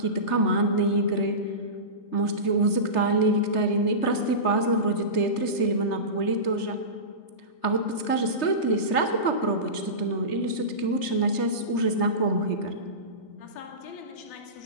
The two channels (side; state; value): right; late; 3.3 ms